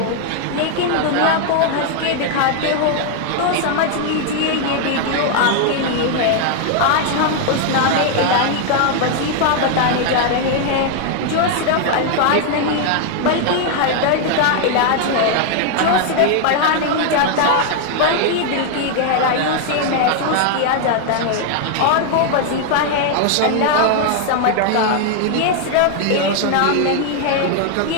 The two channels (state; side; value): different; both; correlation 0.00